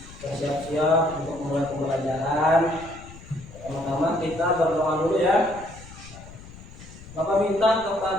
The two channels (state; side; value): noise; left; rumble, 17 dB below the sound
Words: bersiap-siap untuk mulai pembelajaran. Pertama-tama kita berdoa dulu ya. Bapak minta